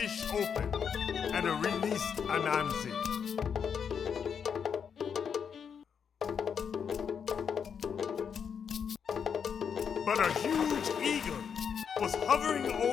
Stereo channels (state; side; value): quieter; right; 7.1 dB